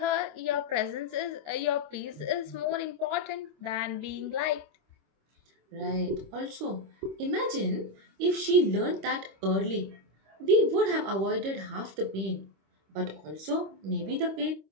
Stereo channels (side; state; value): left; late; 25 ms